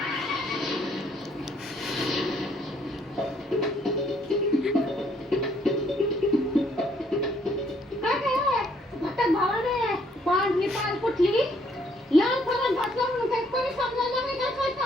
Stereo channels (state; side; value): normal; both; correlation 0.67